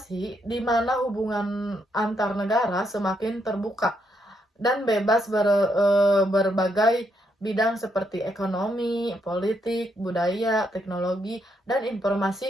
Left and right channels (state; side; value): normal; both; correlation 0.77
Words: di mana hubungan antar negara semakin terbuka dan bebas berbagai bidang seperti ekonomi, politik, budaya, teknologi, dan